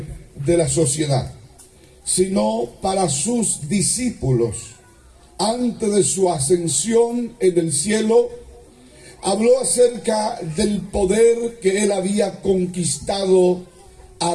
de la sociedad, sino para sus discípulos. Antes de su ascensión en el cielo, habló acerca del poder que él había conquistado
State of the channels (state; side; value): identical; both; correlation 1.00